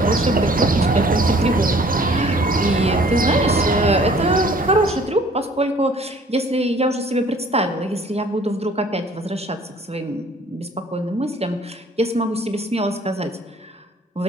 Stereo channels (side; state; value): both; normal; correlation 0.54